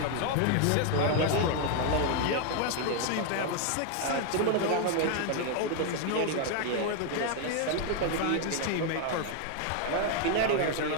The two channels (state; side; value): different; both; correlation 0.00